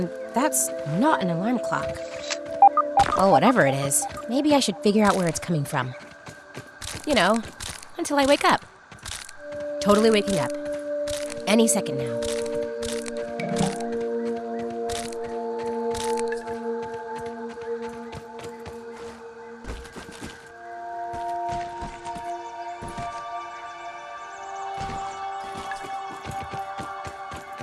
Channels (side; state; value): both; identical; correlation 1.00